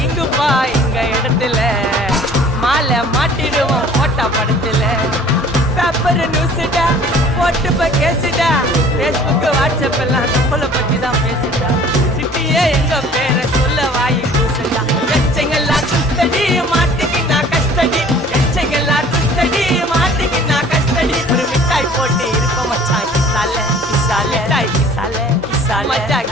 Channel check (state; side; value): normal; both; correlation 0.50